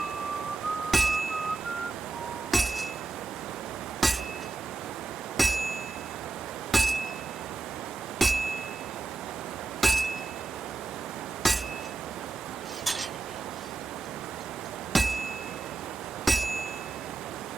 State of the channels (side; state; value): left; quieter; 3.7 dB